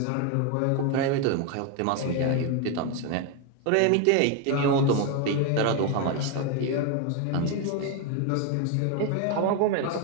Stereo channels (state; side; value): different; both; correlation 0.02